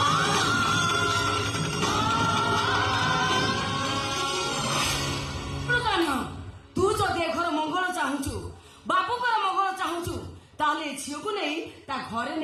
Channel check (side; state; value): both; identical; correlation 1.00